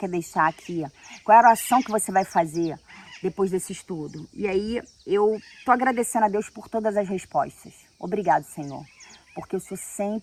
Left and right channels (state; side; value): identical; both; correlation 1.00